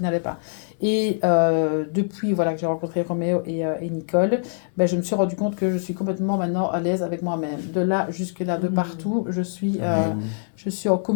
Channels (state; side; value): silent; right; digital silence